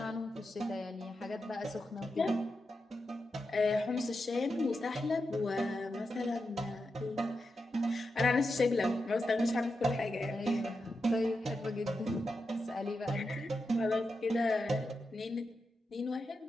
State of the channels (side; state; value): both; normal; correlation 0.88